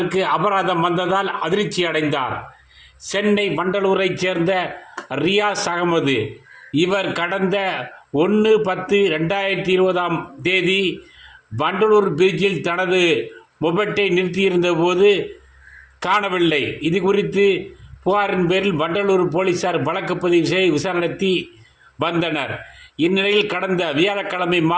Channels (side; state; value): both; identical; correlation 1.00